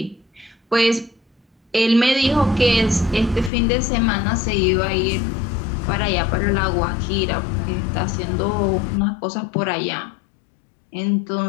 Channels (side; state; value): right; drops out; at 3.5 s